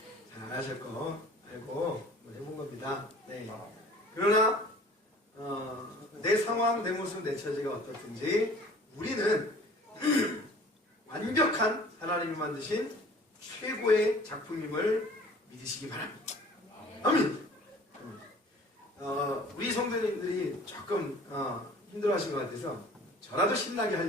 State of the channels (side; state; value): both; normal; correlation 0.48